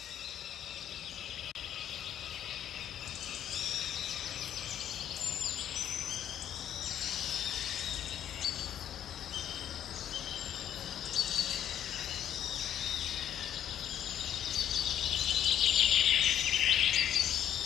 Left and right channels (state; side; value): quieter; right; 10.3 dB